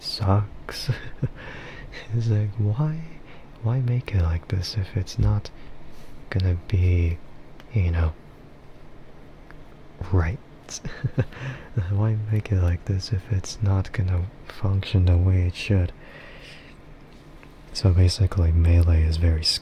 It's like, why make it like this if it's not gonna be, right? Why make it like this if it's not gonna function the way it should? So basically, melee is very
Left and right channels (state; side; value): identical; both; correlation 1.00